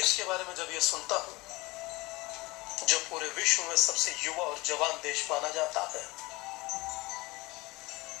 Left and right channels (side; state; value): right; quieter; 22.5 dB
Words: के बारे में जब ये सुनता हूं जो पूरे विश्व में सबसे युवा और जवान देश माना जाता है,